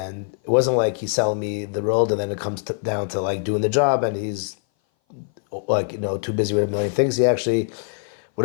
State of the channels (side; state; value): right; silent; 58 dB below the other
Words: it wasn't like he's selling me the world, and then it comes down to like doing the job, and he's too busy with a million things. He actually,